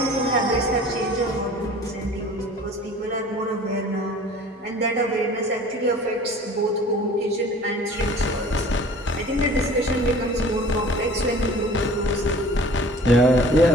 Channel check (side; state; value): both; normal; correlation 0.46